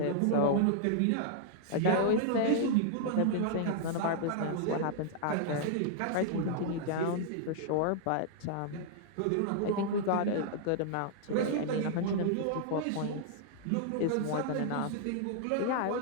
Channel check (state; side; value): different; both; correlation -0.01